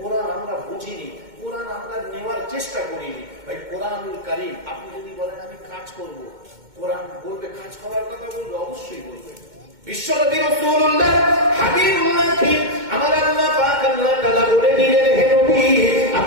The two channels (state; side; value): late; left; 2.2 ms